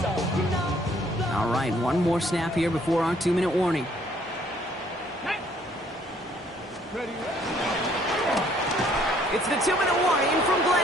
All right, one more snap here before our 2-minute warning. It's the 2-minute warning from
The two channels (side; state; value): both; normal; correlation 0.63